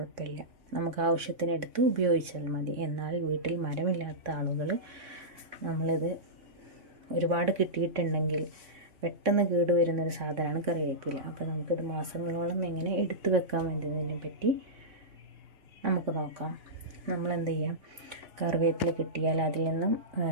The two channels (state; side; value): late; left; 3.6 ms